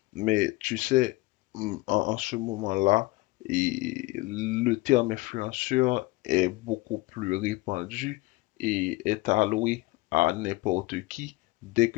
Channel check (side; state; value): right; quieter; 21.3 dB